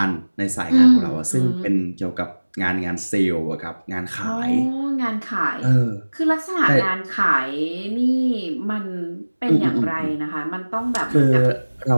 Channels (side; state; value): both; inverted; correlation -1.00